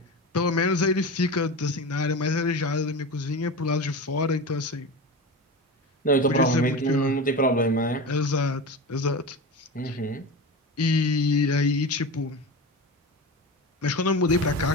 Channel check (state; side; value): normal; both; correlation 0.27